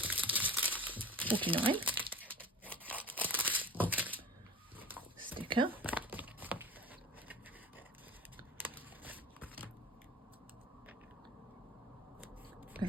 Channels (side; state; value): both; normal; correlation 0.39